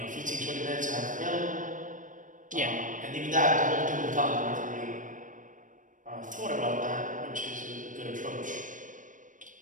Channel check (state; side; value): late; left; 0.38 ms